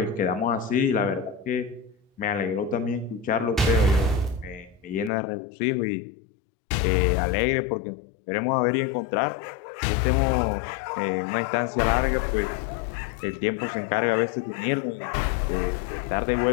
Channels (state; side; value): drops out; right; at 5.1 s